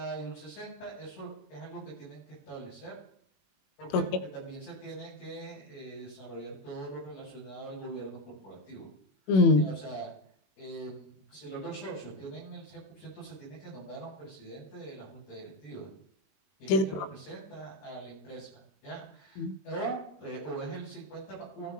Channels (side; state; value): right; late; 21 ms